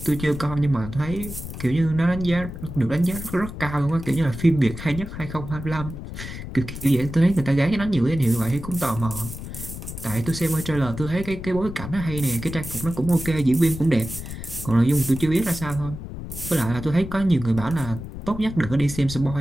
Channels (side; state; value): left; noise; rumble, 10 dB below the sound